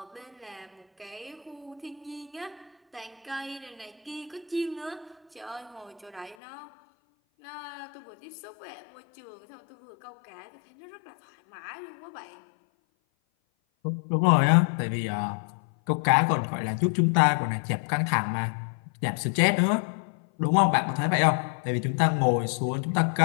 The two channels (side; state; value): right; drops out; at 6.4 s